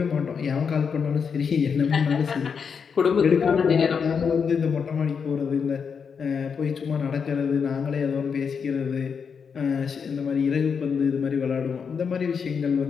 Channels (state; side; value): quieter; right; 6.3 dB